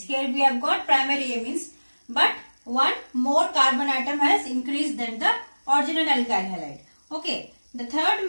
Here we have got primary amines. But one more carbon atom has increased than the original alkyl halide. Okay, the third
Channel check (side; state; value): both; inverted; correlation -1.00